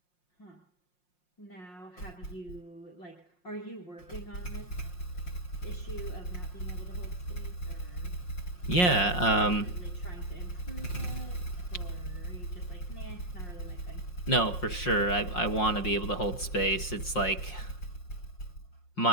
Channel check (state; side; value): late; right; 5.6 ms